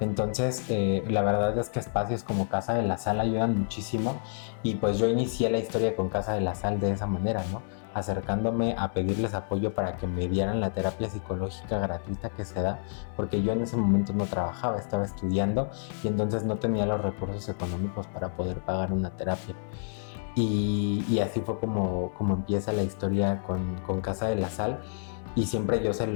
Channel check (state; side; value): silent; right; 59 dB below the other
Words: la verdad es que espacios como Casa de la Sal ayudan muchísimo, y pues yo inicié la historia con Casa de la Sal de esa manera, ¿no? Acercándome a pedirles apoyo para que me dieran la terapia psicológica gratuita que se da, porque yo en ese momento no trabajaba, estaba estudiando, y entonces no tenía los recursos económicos para poder pagar una terapia. Y así fue como empieza la historia con Casa de la Sal. Y siempre yo se